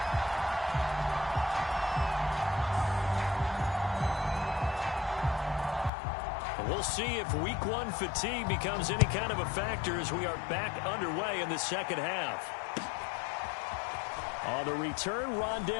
We'll see if week one fatigue becomes any kind of a factor as we are back underway in the second half. On the return,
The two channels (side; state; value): right; drops out; at 5.9 s